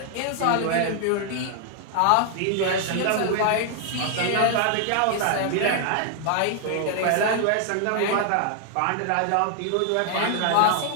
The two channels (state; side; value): different; both; correlation 0.00